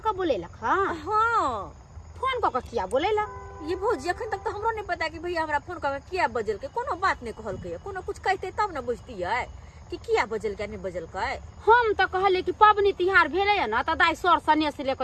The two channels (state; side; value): identical; both; correlation 1.00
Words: के बोलेलक? हां हां फोन क के किया बोलेला? ये भौजी अखन तक तो हमरो नहीं पता कि भैया हमरा फोन करके किया बजल के। कोनो बात नहीं कहल के, कोनो कुछ कहते तब न बुझती है कि किया बजल के नहीं बजल के। हम तो कहले कि पबनी तिहार भेले न त दाई सर सने से लेके